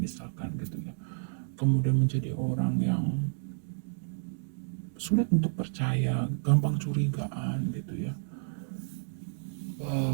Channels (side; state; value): left; silent; digital silence